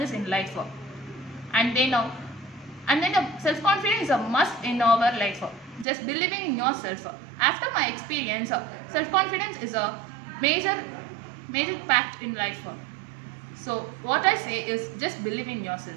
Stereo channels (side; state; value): left; drops out; at 5.9 s